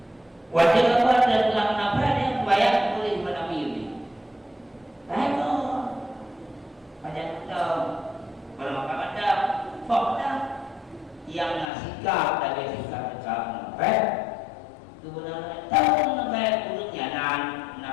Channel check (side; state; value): right; drops out; at 11.7 s